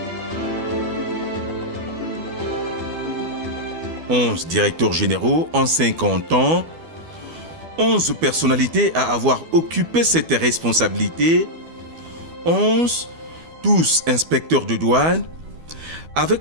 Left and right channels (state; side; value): late; left; 12 ms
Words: 11 directeurs généraux en 50 ans, 11 personnalités à avoir occupé cette responsabilité, 11, tous inspecteurs de douane,